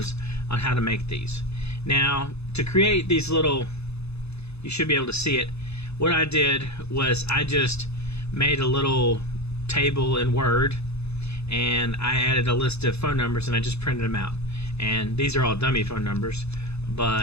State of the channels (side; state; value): right; late; 0.79 ms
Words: on how to make these. Now, to create these little, you should be able to see it. What I did was I just made a little table in Word, and I added a list of phone numbers, and I just printed them out. And these are all dummy phone numbers,